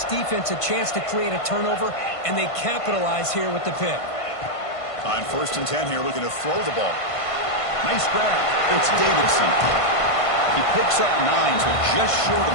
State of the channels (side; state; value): right; late; 1.5 ms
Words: defense a chance to create a turnover, and they capitalize here with the pick. On 1st and 10 here, looking to throw the ball. Nice grab. It's Davidson. He picks up 9, so just short of